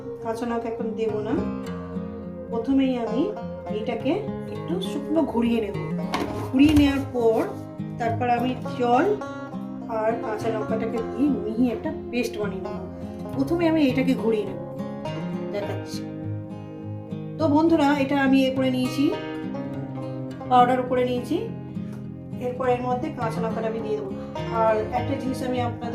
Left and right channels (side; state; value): both; identical; correlation 1.00